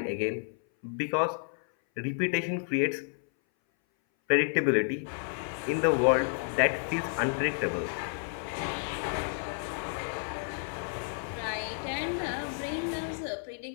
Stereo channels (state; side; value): silent; right; 57 dB below the other